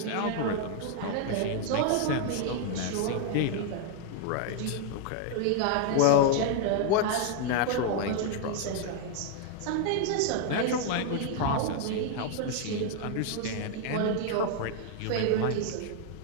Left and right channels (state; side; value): different; both; correlation 0.00